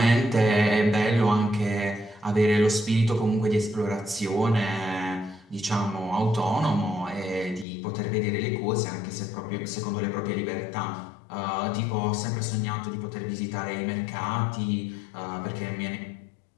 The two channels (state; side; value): drops out; right; at 7.7 s